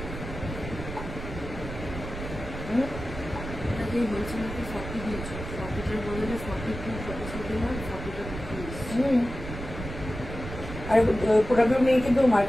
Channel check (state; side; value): noise; right; rumble, 9 dB below the sound